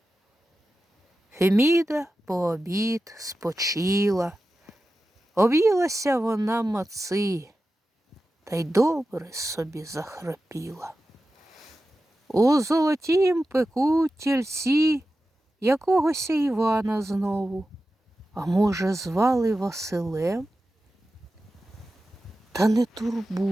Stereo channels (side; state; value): both; normal; correlation 0.93